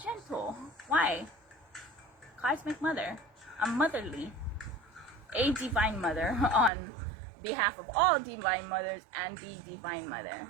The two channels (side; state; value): left; drops out; at 6.7 s